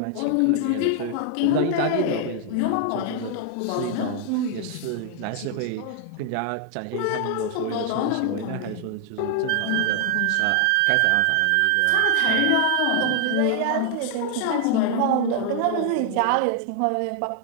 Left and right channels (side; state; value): both; different; correlation 0.00